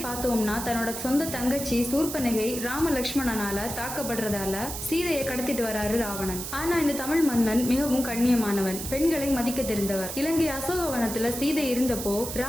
பார்த்தோம்னா, தன்னோட சொந்த தங்கச்சி சூர்பனகை ராம லக்ஷ்மணனால தாக்கப்படுறதால சீதையை கடத்திட்டு வராரு ராவணன். ஆனா இந்த தமிழ் மன்னன் மிகவும் கண்ணியமான பெண்களை மதிக்க தெரிந்தவர். இலங்கை அசோகவனத்துல சீதை இருந்தப்போ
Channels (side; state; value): right; noise; hiss, 7 dB below the sound